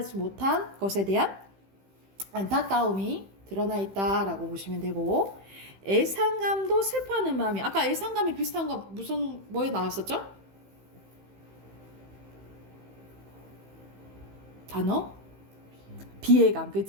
못한 것에 대한 안타까움이 드러나 있다라고 보시면 되고, 애상감도 슬퍼하는 마음이, 아까 애상감이 비슷한 거 뭐에 나왔었죠? 단어? 비애감,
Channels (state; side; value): late; left; 15 ms